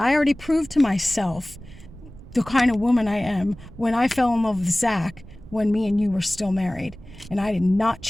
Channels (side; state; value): right; noise; rumble, 18 dB below the sound